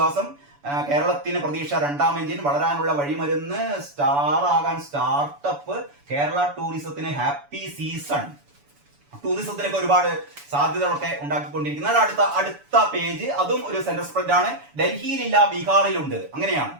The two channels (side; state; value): left; late; 7.0 ms